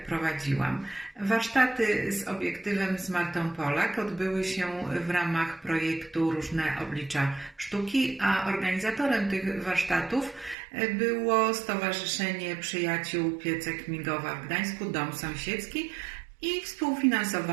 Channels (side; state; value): left; drops out; at 10.6 s